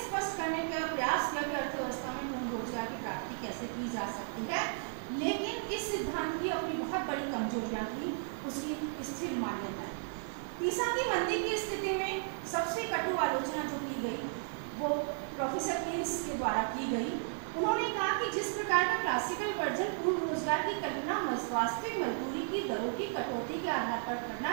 स्पष्ट करने का प्रयास किया कि अर्थव्यवस्था में पूर्ण रोजगार की प्राप्ति कैसे की जा सकती है, लेकिन इस सिद्धांत की अपनी बहुत बड़ी कमजोरियां थी, उसकी स्थिर मान्यता। तीसा की मंदी की स्थिति में सबसे कटु आलोचना जो की गई वो प्रोफेसर केन्स के द्वारा की गई। उन्होंने कहा कि जिस प्रकार का क्लासिकल वर्जन पूर्ण रोजगार की कल्पना वास्तविक मजदूरी की दरों की कटौती के आधार पर करना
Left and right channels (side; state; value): left; silent; digital silence